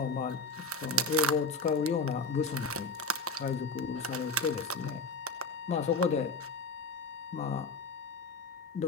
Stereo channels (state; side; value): quieter; right; 3.3 dB